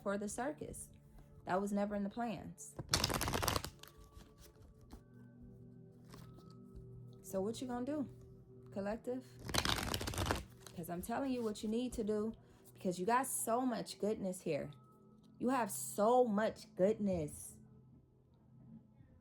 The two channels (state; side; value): identical; both; correlation 1.00